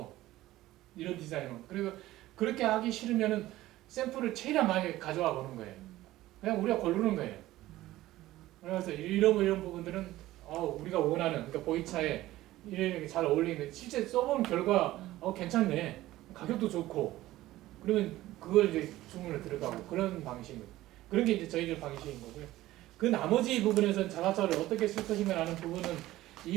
이런 디자인으로 그리고 그렇게 하기 싫으면은 샘플을 최대한 많이 가져와 보는 거예요. 그냥 우리가 고르는 거예요. 그래서 이런 부분들은 우리가 원하는 그러니까 보이차에 이렇게 잘 어울리는 실제 써본 결과 괜찮네 가격도 좋고 그러면 그걸 이제 주문을 들어가고 그런 방식입니다. 그런 게 이제 저희들 방식인 거고요. 그 나머지 부분에서는 자사차를 어떻게 쓸 것인가라는 부분은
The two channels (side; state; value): left; quieter; 16.1 dB